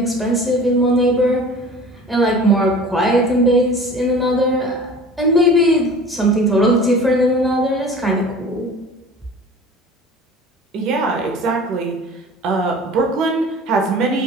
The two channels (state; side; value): normal; both; correlation 0.42